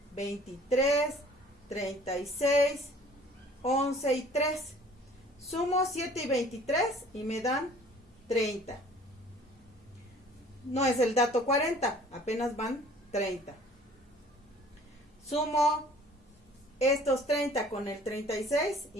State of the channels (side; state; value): both; normal; correlation 0.52